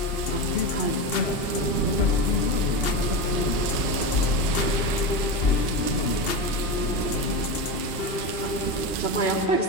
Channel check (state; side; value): late; right; 2.7 ms